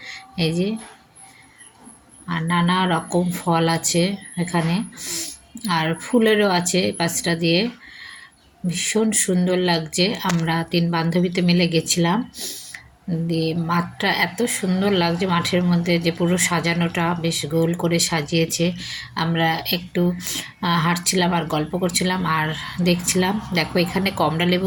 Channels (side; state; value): both; identical; correlation 1.00